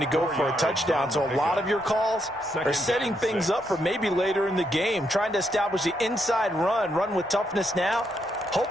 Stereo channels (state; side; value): normal; both; correlation 0.78